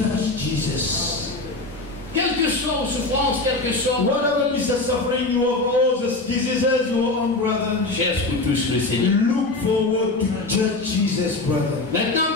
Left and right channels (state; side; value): quieter; right; 3.1 dB